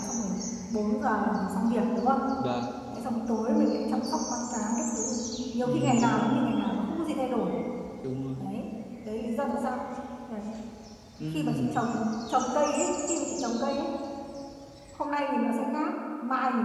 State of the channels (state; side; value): identical; both; correlation 1.00